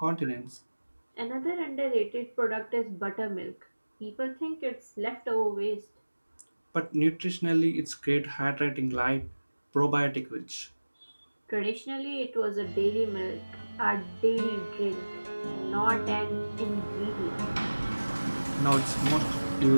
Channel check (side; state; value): both; inverted; correlation -1.00